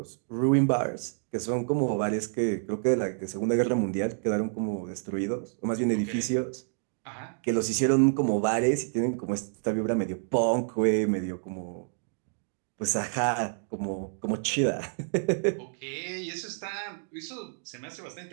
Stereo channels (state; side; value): silent; left; digital silence